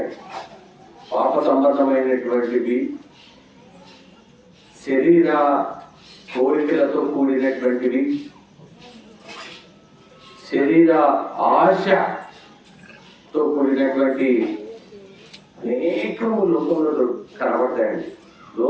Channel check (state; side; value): identical; both; correlation 1.00